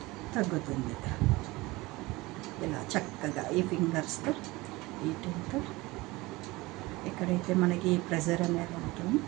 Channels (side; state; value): left; quieter; 21.4 dB